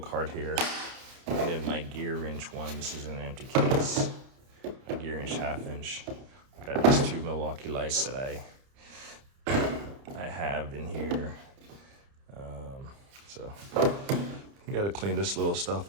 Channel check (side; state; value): left; late; 30 ms